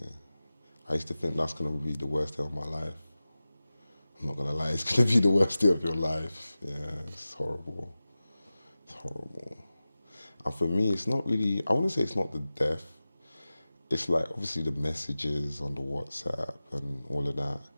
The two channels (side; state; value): both; inverted; correlation -0.96